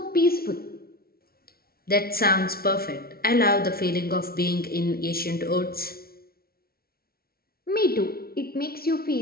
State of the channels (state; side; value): late; right; 0.44 ms